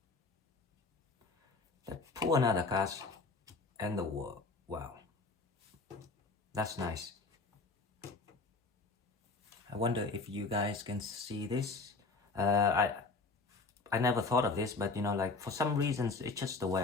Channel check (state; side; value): quieter; right; 3.8 dB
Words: Let's pull another card and the World. Wow, that's nice. I wonder if you guys can see this. I never thought of this, but you know, like for some reasons, it's just the way